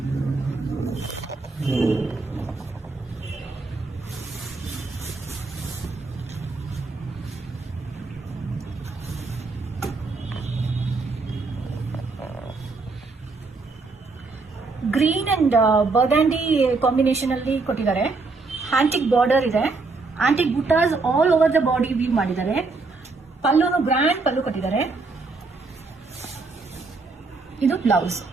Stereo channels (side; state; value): left; quieter; 3.9 dB